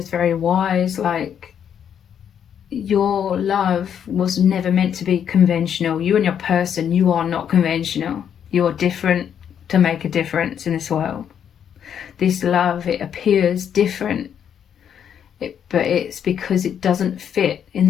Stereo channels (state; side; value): quieter; right; 8.6 dB